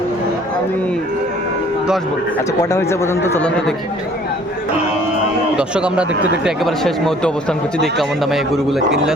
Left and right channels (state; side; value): normal; both; correlation 0.55